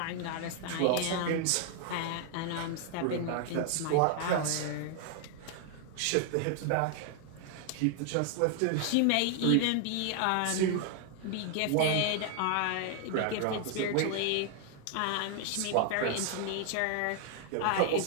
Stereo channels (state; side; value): different; both; correlation 0.00